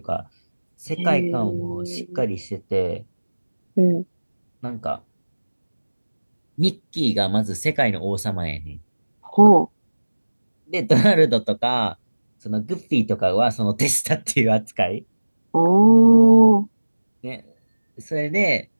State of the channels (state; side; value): inverted; both; correlation -1.00